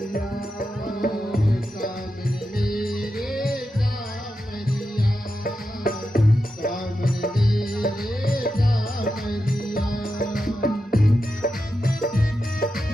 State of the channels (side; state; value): both; normal; correlation 0.89